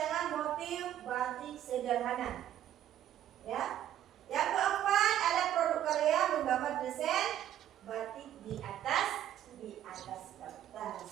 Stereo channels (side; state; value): left; quieter; 11.4 dB